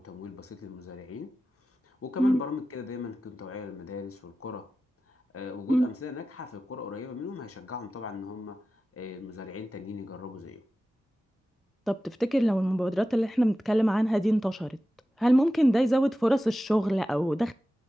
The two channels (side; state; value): both; normal; correlation 0.94